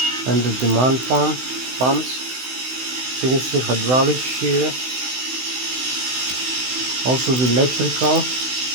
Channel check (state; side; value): late; left; 16 ms